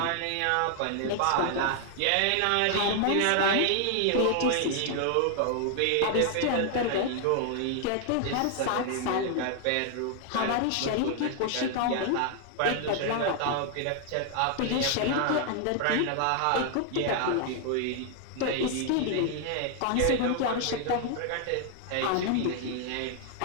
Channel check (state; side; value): different; both; correlation 0.00